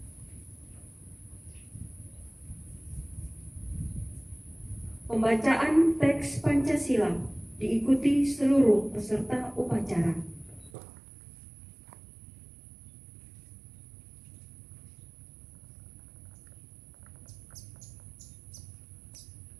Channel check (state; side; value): drops out; left; at 10.7 s